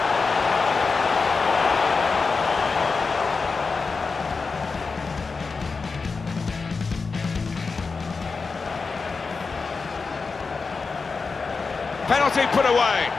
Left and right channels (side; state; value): right; quieter; 4.6 dB